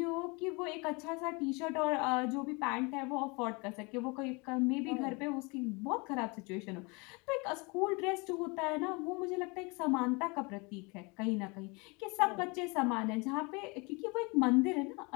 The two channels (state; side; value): quieter; right; 28.6 dB